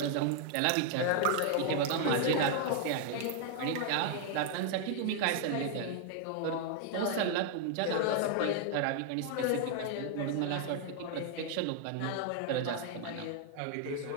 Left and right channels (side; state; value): both; different; correlation 0.00